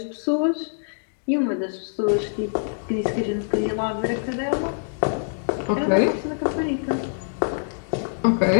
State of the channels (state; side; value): silent; right; digital silence